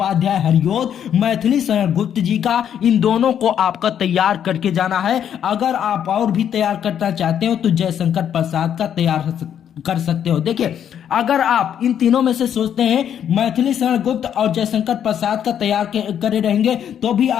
हरियोत, मैथिली शरण गुप्त जी का, इन दोनों को आपका तैयार करके जाना है। अगर आप और भी तैयार करना चाहते हो तो जयशंकर प्रसाद का तैयार कर सकते हो। देखिए अगर आप इन तीनों में से सोचते हैं मैथिली शरण गुप्त और जयशंकर प्रसाद का तैयार करे रहेंगे तो भी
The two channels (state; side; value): quieter; right; 9.2 dB